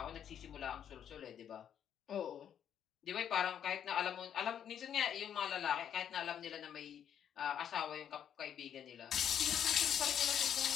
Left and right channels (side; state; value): right; quieter; 9.2 dB